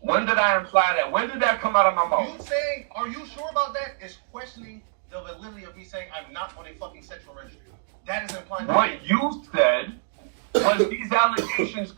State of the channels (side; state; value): left; silent; 62 dB below the other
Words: When did I imply that? When did that come out of my mouth? You saying, are you sure about that? Is questioning the validity of me saying I'm not on a fucking sexual registry. That is implying. What you said was these allegations